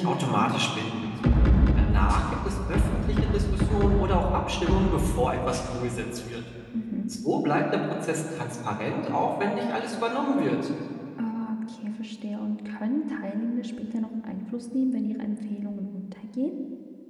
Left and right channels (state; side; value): identical; both; correlation 1.00